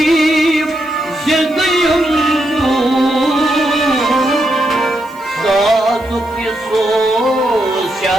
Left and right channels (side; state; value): right; noise; hiss, 26 dB below the sound